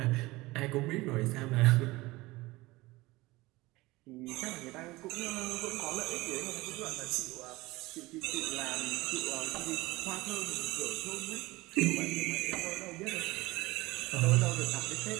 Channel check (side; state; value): left; quieter; 20.6 dB